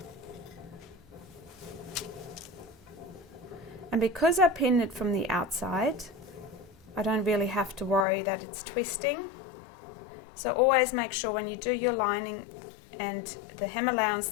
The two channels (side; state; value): right; drops out; at 8.1 s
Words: And because I pinned it from the outside, I don't really have to worry that it's twisting. So always make sure when you do your lining and the hem allowance